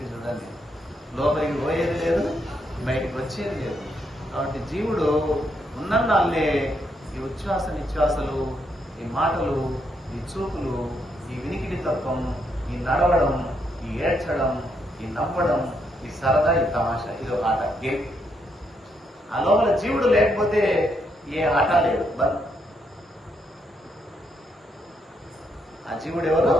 చూడండి, లోపలికి పోయేది లేదు, బయటికి వచ్చేది లేదు. కాబట్టి జీవుడు ఉన్నన్నాళ్ళే ఈ ఉచ్ఛ్వాస నిశ్వాసలు, ఈ మాటలు, ఈ చూపులు, ఈ వినికిడి తత్వం, ఈ నడవడం, ఈ ఏడ్చడం, ఈ నవ్వడం, ఈ సరదా, ఈ తమాషా, ఇది ఒక ఆట, గేమ్. ఆ లోపల జీవుడు లేకపోతే ఏ ఆట లేదు, బంద్. ఆ జీవుడు ఎవరు?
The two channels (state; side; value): normal; both; correlation 0.77